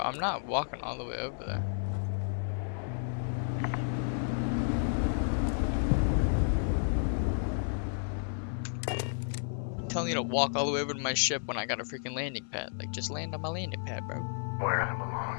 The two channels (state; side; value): silent; right; 56 dB below the other